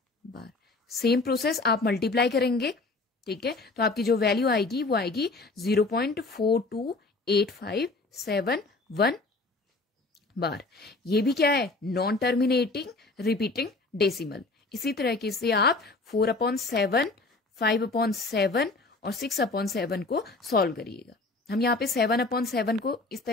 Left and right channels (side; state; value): right; quieter; 3.4 dB